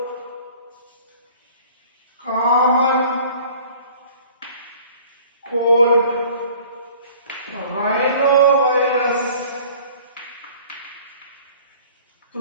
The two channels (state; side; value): inverted; both; correlation -0.49